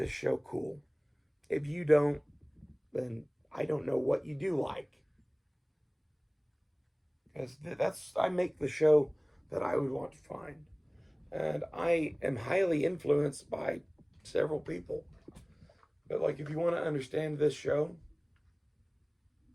show cool. If you don't, then I don't know what you do like. Because I make the show that I would want to find. And I am highly influenced by several people. But like, if you want to understand this show,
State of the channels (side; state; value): both; identical; correlation 1.00